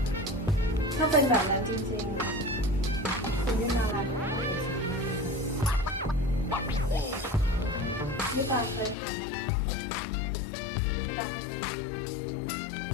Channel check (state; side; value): drops out; right; at 9.0 s